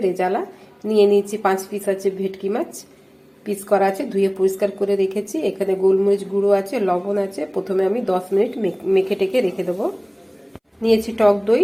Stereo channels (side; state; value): both; identical; correlation 1.00